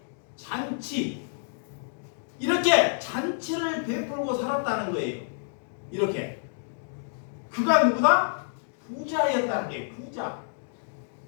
잔치 이렇게 잔치를 베풀고 살았다는 거예요. 이렇게 그가 누구다? 부자였다는 게 부자.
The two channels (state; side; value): silent; right; digital silence